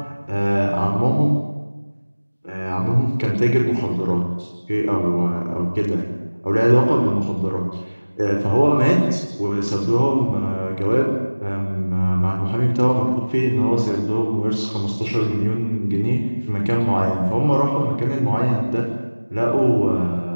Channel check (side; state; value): both; inverted; correlation -1.00